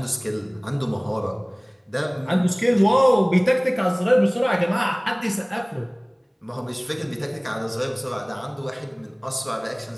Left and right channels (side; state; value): both; identical; correlation 1.00